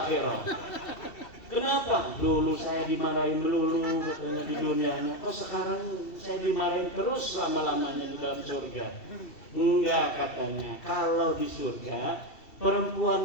Kenapa? Dulu saya dimarahin dulu katanya di dunianya. Kok sekarang saya dimarahin terus lama-lamanya di dalam surga? Enggak katanya. Kalau di surga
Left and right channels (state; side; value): late; right; 2.7 ms